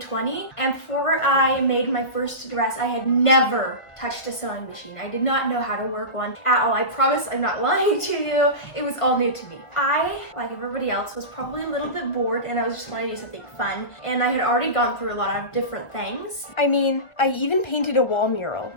and before I made my first dress, I had never touched a sewing machine. I did not know how to work one at all. I promise I'm not lying to you. It was all new to me. I, like everybody else, was probably a little bit bored and I was just wanting to do something fun, and I had already gone through a lot of different things. I mean, I even painted a wall mural.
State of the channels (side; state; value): right; late; 1.3 ms